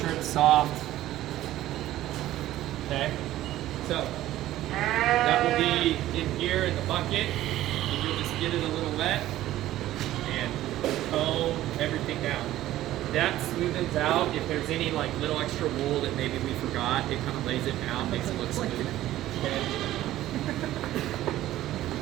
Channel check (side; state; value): left; quieter; 14.4 dB